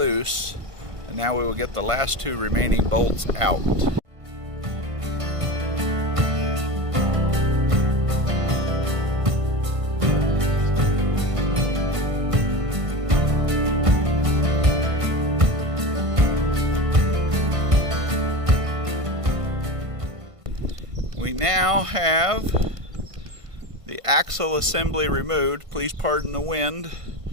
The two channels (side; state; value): left; late; 1.5 ms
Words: and now we will get the last 2 remaining bolts out. We now have the axle assembly removed. Please pardon the wind,